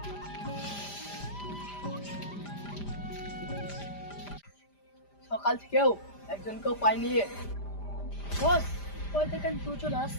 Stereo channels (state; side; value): late; right; 5.0 ms